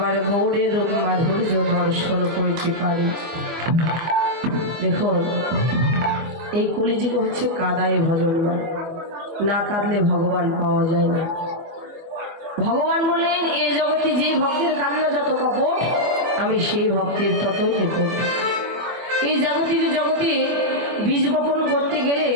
গৌরের মাধুর্য দর্শন করিতে পারে। দেখুন, এই কলিযুগ হচ্ছে কাদায় ভজনমান, না কাঁদলে ভগবান পাওয়া যায় না। ভগবান বললেন, এই জগতে যে ভক্তের কান্না যত কপট, আমি সেই ভক্তের ততই নিকট। এই জাগতিক জগতে বীজ বপন করতে গেলে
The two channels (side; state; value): left; late; 24 ms